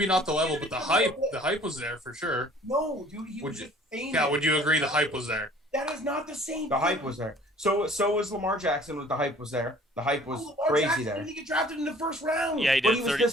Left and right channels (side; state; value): both; normal; correlation 0.52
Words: not the level, but the hype was there for sure. No, dude, he was just famous. Yeah, would you agree the hype was there? That is not the same. The hype was there. So was Lamar Jackson. The hype was there. The hype was crazy Jackson there. Didn't he get drafted in the first round? Yeah, he did.